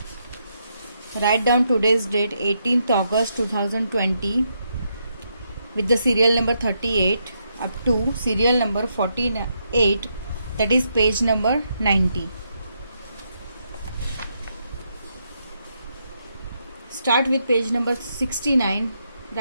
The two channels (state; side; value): inverted; both; correlation -0.79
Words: Write down today's date 18th August 2020 with the serial number 38 up to serial number 48, that is page number 90. Start with page number 69.